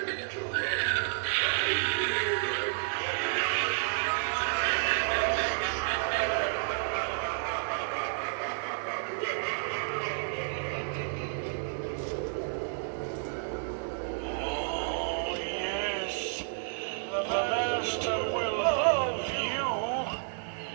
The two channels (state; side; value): silent; left; digital silence